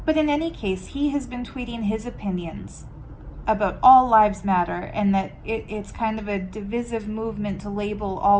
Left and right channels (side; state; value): both; identical; correlation 1.00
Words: But in any case, he has been tweeting his opinions about all lives matter, and that it's kind of a divisive movement to label